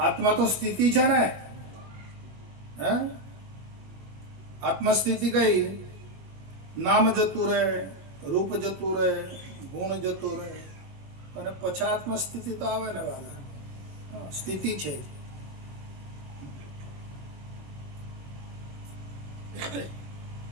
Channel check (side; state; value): left; late; 21 ms